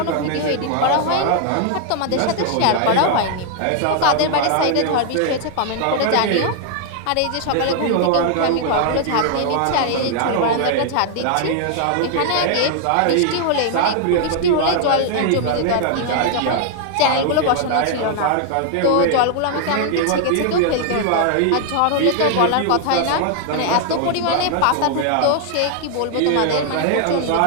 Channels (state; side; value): different; both; correlation 0.00